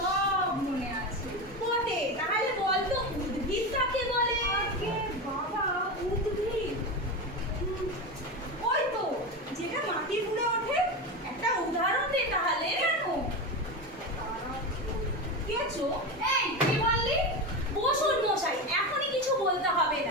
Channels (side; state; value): both; normal; correlation 0.20